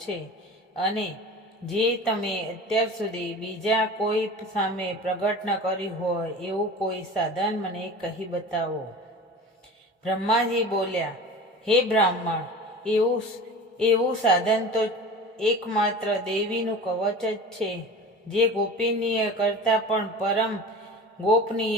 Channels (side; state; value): both; normal; correlation 0.36